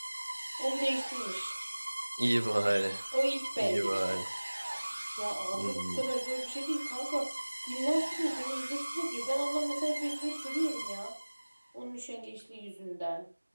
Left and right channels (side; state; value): both; inverted; correlation -1.00